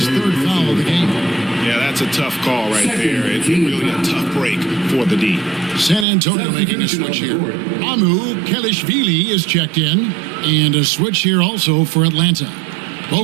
3rd foul of the game. Yeah, that's a tough call right there. It's really a tough break for the D. San Antonio making a switch here. Amu Kelishvili is checked in. And a switch here also for Atlanta.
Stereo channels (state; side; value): drops out; left; at 6.1 s